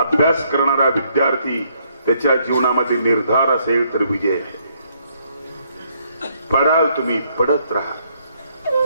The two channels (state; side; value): inverted; both; correlation -0.70